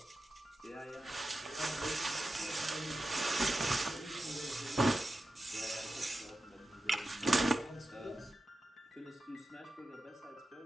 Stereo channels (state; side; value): normal; both; correlation 0.92